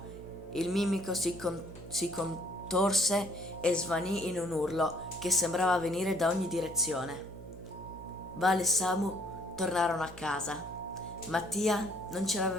il mimico si contorse e svanì in un urlo che sembrava venire da ogni direzione. Vale e Samu tornarono a casa. Mattia non ce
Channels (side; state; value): right; noise; hum, 14 dB below the sound